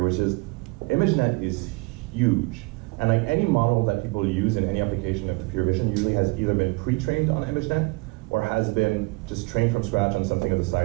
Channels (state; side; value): quieter; left; 27.0 dB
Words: which is ImageNet is huge. And like any model that people use in any application of computer vision usually has either been pre-trained on ImageNet or has been just trained from scratch on something of the